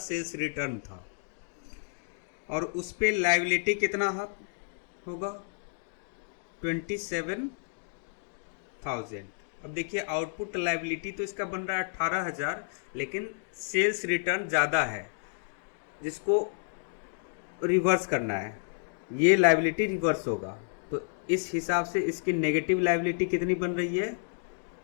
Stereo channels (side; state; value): right; silent; digital silence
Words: रिटर्न था, और उस पर लायबिलिटी कितना होगा? 27,000। अब देखिए आउटपुट लायबिलिटी तो इसका बन रहा है 18,000, लेकिन सेल्स रिटर्न ज़्यादा है, जिसको रिवर्स करना है। ये लायबिलिटी रिवर्स होगा, तो इस हिसाब से इसकी नेगेटिव लायबिलिटी कितनी बन रही है?